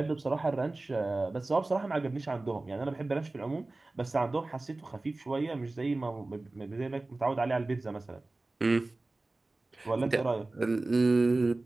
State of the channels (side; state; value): left; quieter; 3.1 dB